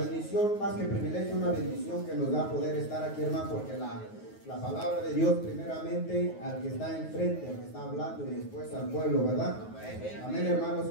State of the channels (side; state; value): right; late; 9.4 ms